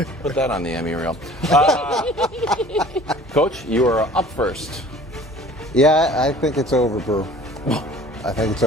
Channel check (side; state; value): both; normal; correlation 0.48